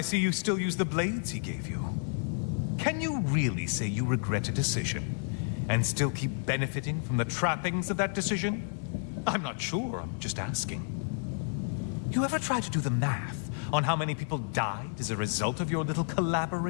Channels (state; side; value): silent; right; digital silence